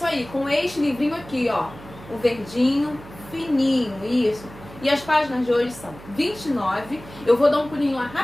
aí, com este livrinho aqui, ó, o verdinho, fininho, isso. E as páginas de hoje são 29, eu vou dar um pulinho lá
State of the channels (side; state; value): right; noise; hum, 18 dB below the sound